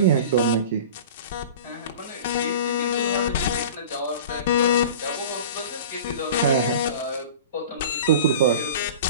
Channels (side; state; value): both; inverted; correlation -0.37